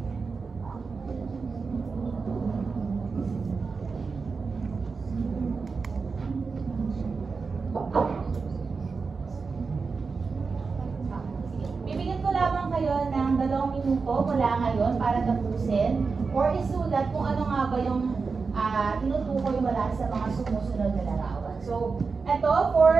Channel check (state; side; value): quieter; left; 4.7 dB